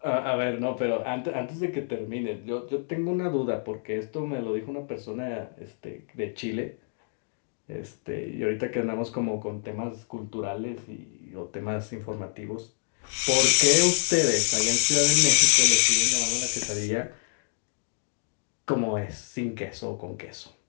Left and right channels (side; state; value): right; silent; digital silence